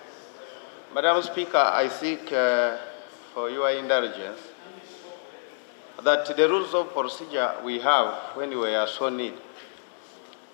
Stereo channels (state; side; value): silent; right; digital silence